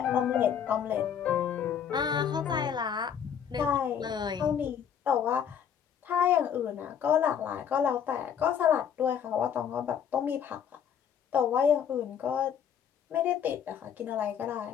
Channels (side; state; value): right; quieter; 8.3 dB